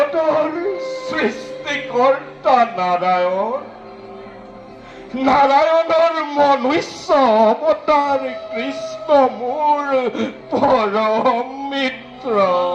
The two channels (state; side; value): identical; both; correlation 1.00